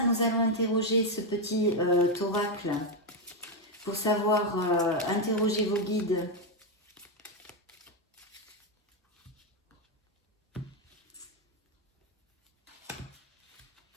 nous allons interroger ce petit oracle pour savoir interroger vos guides.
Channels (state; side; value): normal; both; correlation 0.04